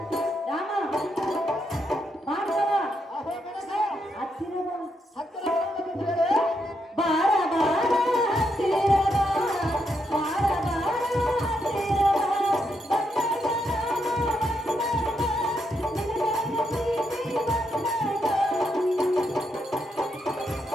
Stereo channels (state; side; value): normal; both; correlation 0.80